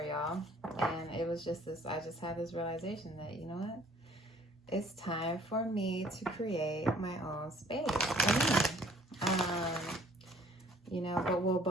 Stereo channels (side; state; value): both; normal; correlation 0.57